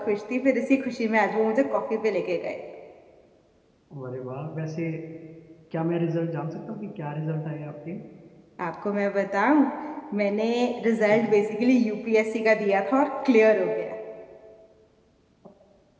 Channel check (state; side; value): identical; both; correlation 1.00